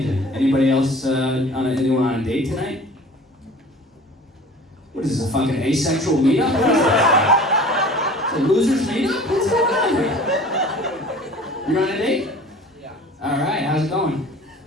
Anybody else, anyone on a date tonight? What is this, a fucking asexual meetup? What is that? It's a loser's meetup? What's going on here? You're on a date? Yeah. All right, how's it going?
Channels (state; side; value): normal; both; correlation 0.44